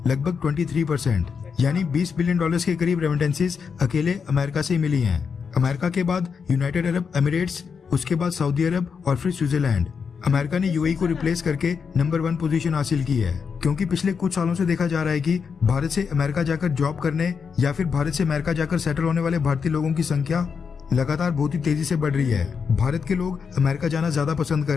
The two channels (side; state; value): right; quieter; 6.0 dB